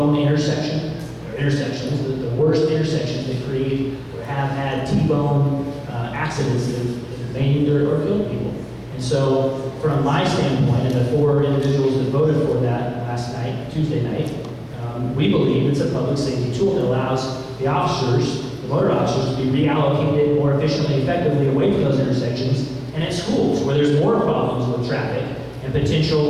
intersections, the worst intersections that create or have had T-bone accidents that have maimed or killed people. And so, from my standpoint, and the 4 individuals that voted for that last night, Tuesday night, we believe it's a public safety tool that allows the officers, the motor officers, to be reallocated more efficiently and effectively away from those intersections and at schools where there's more problems with traffic and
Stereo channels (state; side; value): identical; both; correlation 1.00